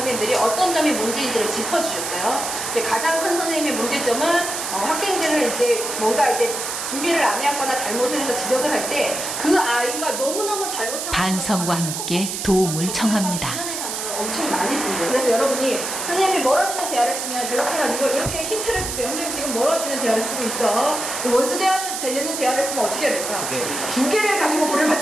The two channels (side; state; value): right; noise; hiss, 4 dB below the sound